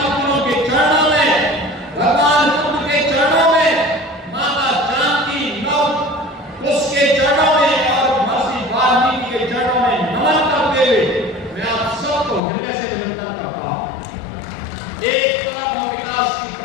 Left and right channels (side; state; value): right; drops out; at 12.4 s